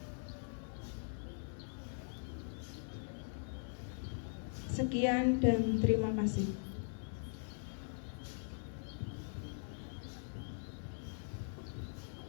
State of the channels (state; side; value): silent; right; 50 dB below the other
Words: Sekian dan terima kasih.